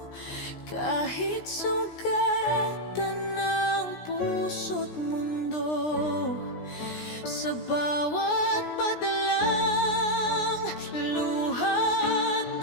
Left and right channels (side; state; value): right; late; 17 ms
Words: Kahit sugatan ng puso't mundo, sa bawat padalang luha't